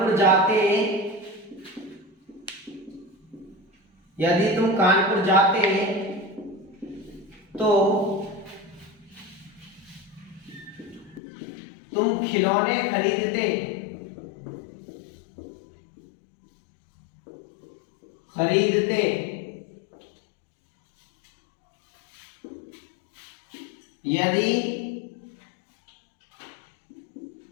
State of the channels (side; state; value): right; drops out; at 11.2 s